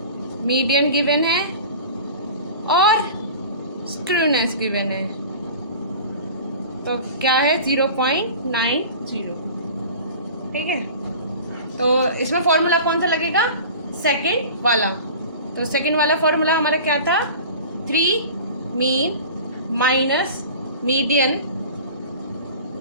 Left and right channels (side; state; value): both; inverted; correlation -0.38